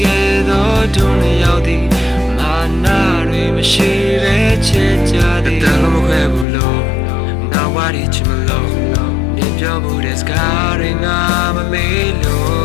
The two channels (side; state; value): right; drops out; at 6.5 s